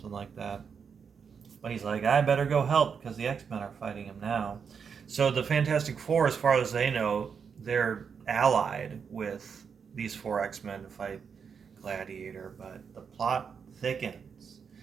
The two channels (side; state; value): left; quieter; 6.4 dB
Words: like that. But he's like, I better go help because the X-Men are fighting him now. So the Fantastic Four, as far as they know, they're allied with these 4 X-Men to fight Gladiator, but the plot thickens.